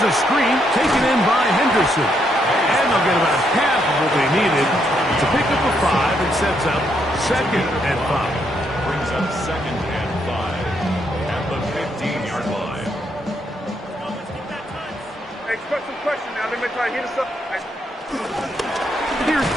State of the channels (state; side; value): normal; both; correlation 0.76